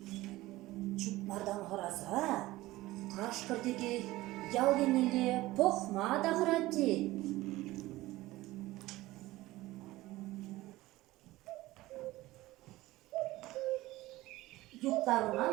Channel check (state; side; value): quieter; left; 18.0 dB